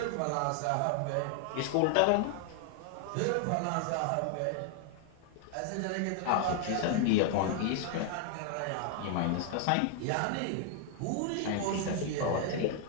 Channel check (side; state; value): both; different; correlation 0.00